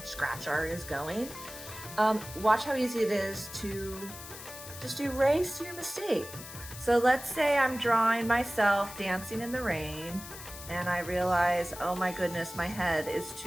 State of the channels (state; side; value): noise; left; hiss, 13 dB below the sound